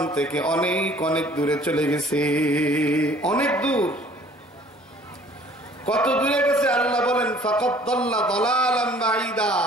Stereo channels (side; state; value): both; normal; correlation 0.54